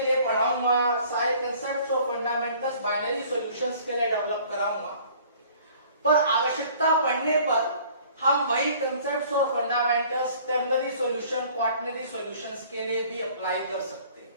पढ़ाऊंगा, सारे कंसेप्ट्स और फंडामेंटल्स बाइनरी सॉल्यूशंस के लिए डेवलप कराऊंगा। पर आवश्यकता पड़ने पर हम वही कंसेप्ट्स और fundamentals ternary solution, quaternary solutions के लिए भी अप्लाई कर सकते हैं।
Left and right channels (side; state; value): both; inverted; correlation -0.53